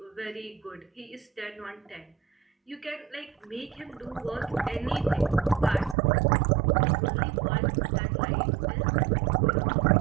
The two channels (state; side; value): drops out; left; at 6.0 s